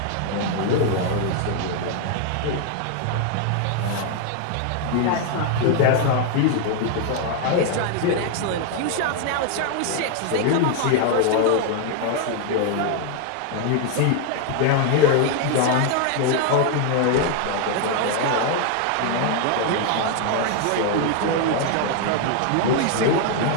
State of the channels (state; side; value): different; both; correlation 0.00